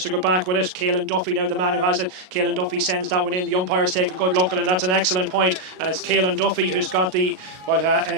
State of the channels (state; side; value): late; left; 38 ms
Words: to go back with it. Caelan Duffy now the man who has it. Caelan Duffy sends that one in. The umpires take a good look at it, and that's an excellent point. And it's Caelan Duffy who's got the what